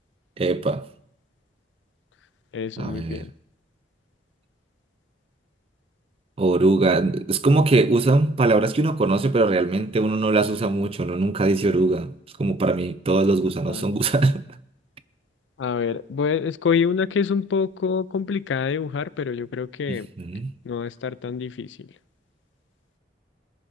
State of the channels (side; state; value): both; normal; correlation 0.54